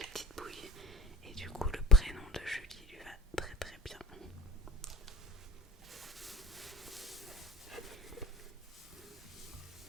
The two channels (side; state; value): both; normal; correlation 0.39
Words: petite bouille et du coup le prénom de Julie lui va très très bien.